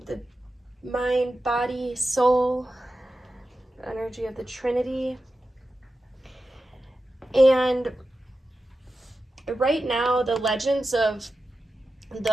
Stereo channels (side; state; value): both; normal; correlation 0.92